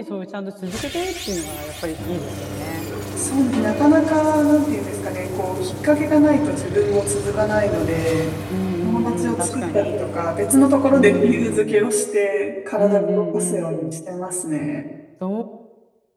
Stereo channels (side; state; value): both; identical; correlation 1.00